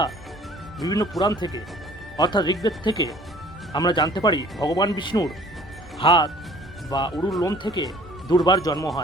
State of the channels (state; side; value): normal; both; correlation 0.52